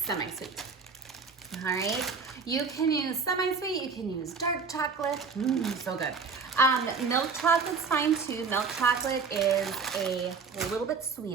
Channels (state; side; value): quieter; left; 5.1 dB